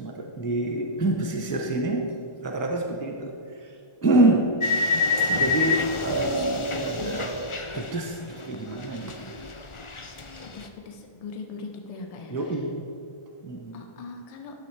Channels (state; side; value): late; right; 1.4 ms